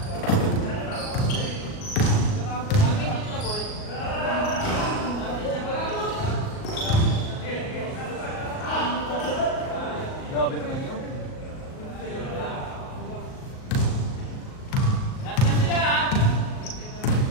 Grabe naman yun.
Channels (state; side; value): late; right; 38 ms